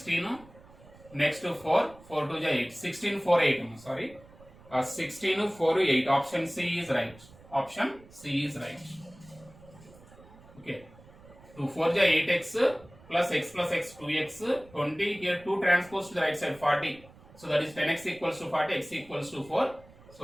Next 4, 4 to 8, 16, 4, 8. Sorry, 16, 4, 8. Option C is right. Option C is right. Okay. 2 4 ja 8x plus x 2x 20. Here 2 transpose to the right side 40. So that is 10x equals to 40, x equals to 4.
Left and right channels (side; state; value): right; noise; rumble, 23 dB below the sound